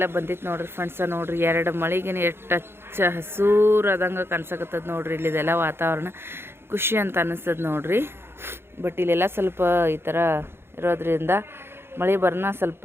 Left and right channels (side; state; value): left; late; 0.11 ms